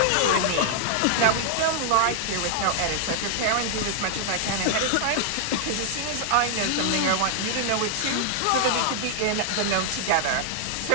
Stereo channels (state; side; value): different; both; correlation 0.00